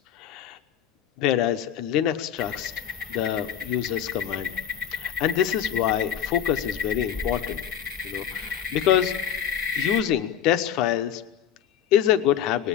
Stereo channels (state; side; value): quieter; right; 9.4 dB